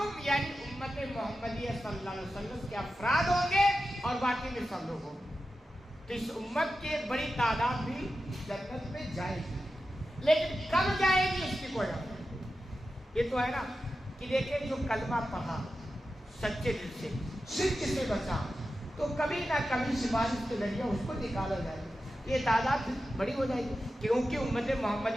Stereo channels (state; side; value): normal; both; correlation 0.92